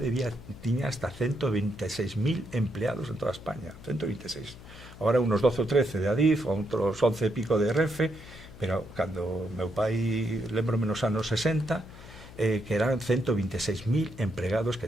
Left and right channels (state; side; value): noise; left; hum, 17 dB below the sound